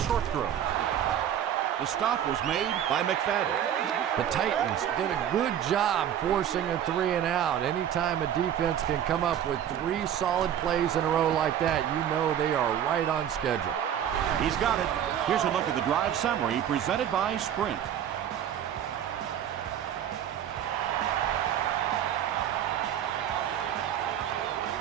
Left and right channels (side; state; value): left; quieter; 10.0 dB